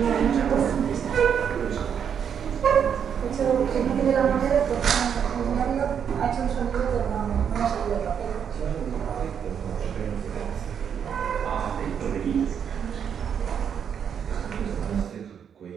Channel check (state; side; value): quieter; left; 7.9 dB